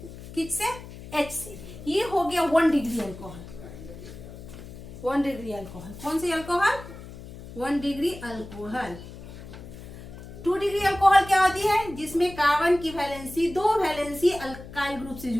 किससे? H से। ये हो गया 1 डिग्री अल्कोहल। 1 डिग्री अल्कोहल कौन सी alcohol? 1 degree alcohol. 2 degree alcohol क्या होती है? जिसमें कार्बन की वैलेंसी 2 वैलेंसी अल्काइल ग्रुप से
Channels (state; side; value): noise; left; hum, 14 dB below the sound